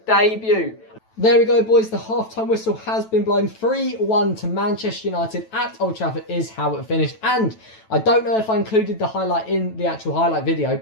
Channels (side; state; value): right; late; 9.1 ms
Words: debut. There we go, boys. The half-time whistle has been blown. 3-1 to Manchester United at Old Trafford is how it finished. And I don't know if I included the highlight in the actual highlight video,